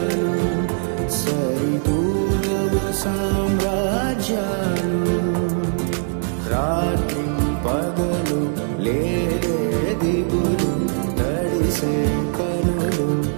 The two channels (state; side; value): silent; left; digital silence